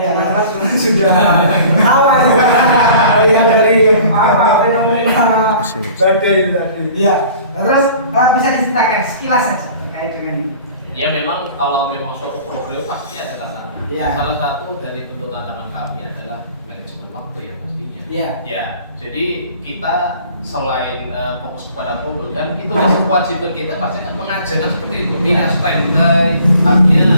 teman-teman semua sudah tahu yang dari fenomena badai itu tadi. Iya. Terus bisa diceritakan sekilas saja terkait dengan ini. Ya memang kalau memang suatu program pasti ada tantangan. Iya. Salah satu dari bentuk tantangan kami adalah manajemen waktu yang pastinya. Iya. Ya, jadi kita selain fokus kepada problem kan itu masih kewajiban kita pasti kan mengajarkan seperti itu. Tidak standby,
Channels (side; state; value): both; inverted; correlation -0.48